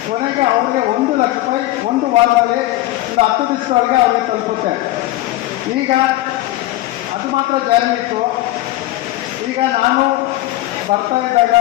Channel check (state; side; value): quieter; right; 16.6 dB